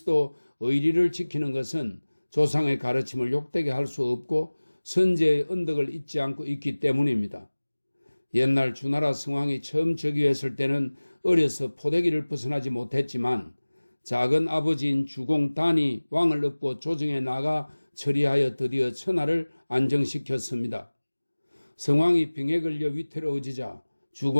의리를 지키는 것은 조상의 가르침을 욕되게 할 수 없고 선제의 언덕을 잊지 않고 있기 때문입니다. 옛날 주나라 성왕이 처음 즉위했을 때는 어려서 포대기를 벗어나지 못했지만 작은 아버지인 주공단이 왕을 얻고 조정에 나가 처리하여 드디어 천하를 안정시켰습니다. 성왕이 병에 걸려 위태로워지자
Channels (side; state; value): both; inverted; correlation -1.00